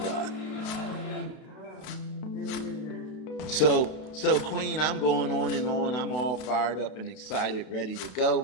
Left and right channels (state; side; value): late; right; 32 ms